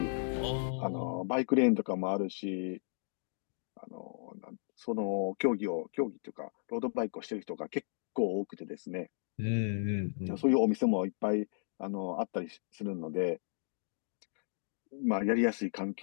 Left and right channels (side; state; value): right; silent; digital silence